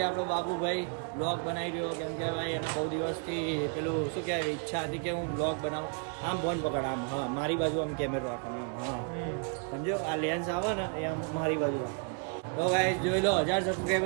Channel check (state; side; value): quieter; left; 40.0 dB